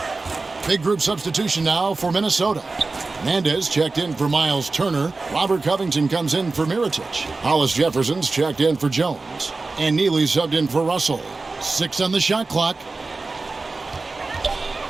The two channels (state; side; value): quieter; left; 3.7 dB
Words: Big group substitution now for Minnesota. Hernandez checked in for Miles Turner. Robert Covington comes in for Mirotic. Hollis Jefferson's checked in for Jones. And Neely subbed in for Russell. 6 on the shot clock.